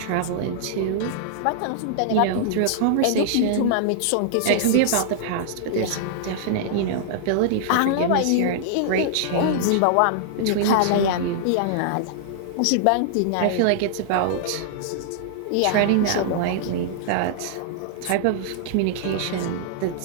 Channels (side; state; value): both; different; correlation -0.01